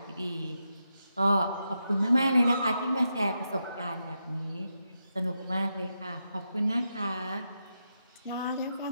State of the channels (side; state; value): both; inverted; correlation -0.85